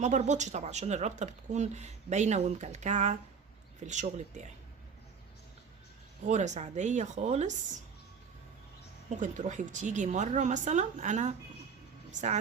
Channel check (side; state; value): left; quieter; 6.0 dB